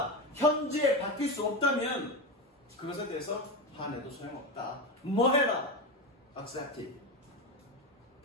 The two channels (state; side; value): normal; both; correlation 0.18